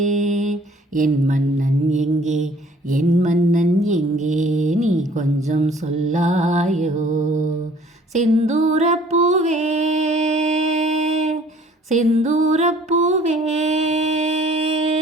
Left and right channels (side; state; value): both; normal; correlation 0.55